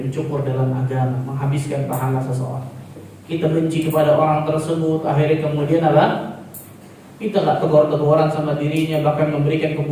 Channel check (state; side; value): identical; both; correlation 1.00